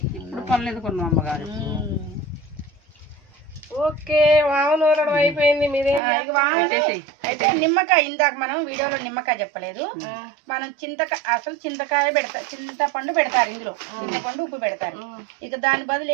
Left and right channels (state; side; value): drops out; left; at 6.0 s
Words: ఇప్పుడు పనులు ఎందుకున్నాం అమ్మగారు. ఓకే వాము నూరడం అయిపోయింది. మీరేం పెట్టేసేయ్. అయితే నిమ్మకాయ ఇందాక మనం వీడియోలో నిమ్మకాయ చెప్పలేదు. మనం అసలు చింతకాయ పెడతారు, చింతపండు పెడతారు ఇందులో, చింతపండు ఉప్పు పెడతారు. ఇక దాని బదులు